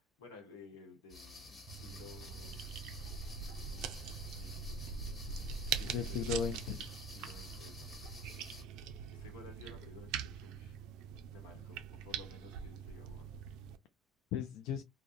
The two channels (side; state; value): both; normal; correlation 0.37